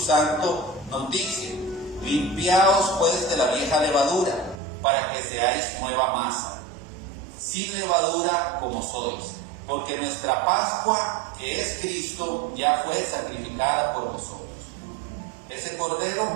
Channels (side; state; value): left; drops out; at 4.6 s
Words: nos dice: limpiaos pues de la vieja levadura, para que seáis nueva masa, sin levadura como sois, porque nuestra Pascua, que es Cristo, ya fue sacrificada por nosotros. Ese